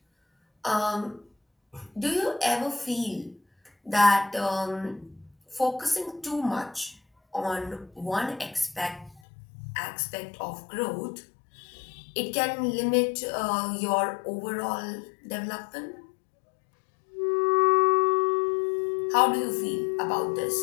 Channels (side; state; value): right; drops out; at 9.2 s